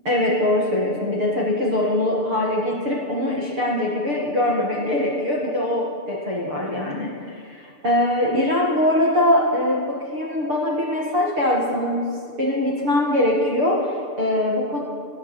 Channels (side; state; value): left; late; 6.8 ms